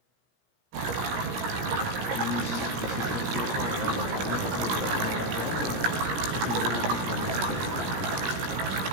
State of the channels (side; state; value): left; late; 17 ms